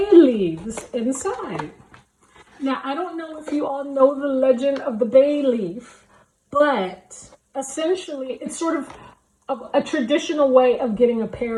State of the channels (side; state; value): both; identical; correlation 1.00